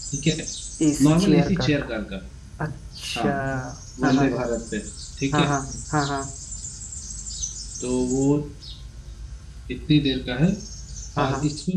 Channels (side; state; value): both; identical; correlation 1.00